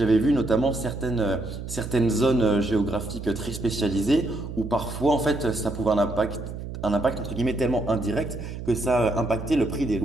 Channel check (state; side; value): noise; right; hum, 8 dB below the sound